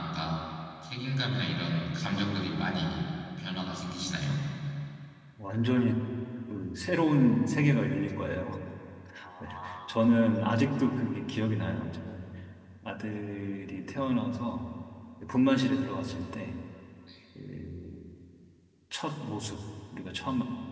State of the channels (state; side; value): identical; both; correlation 1.00